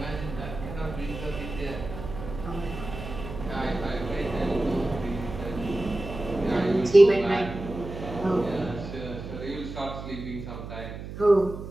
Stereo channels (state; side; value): noise; right; hum, 9 dB below the sound